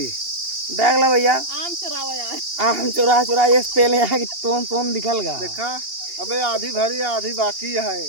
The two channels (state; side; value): late; left; 2.8 ms